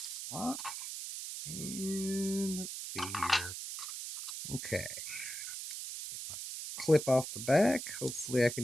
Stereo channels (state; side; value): noise; right; hiss, 7 dB below the sound